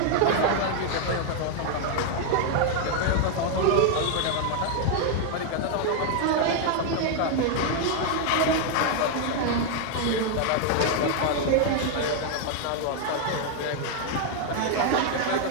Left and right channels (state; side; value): different; both; correlation 0.00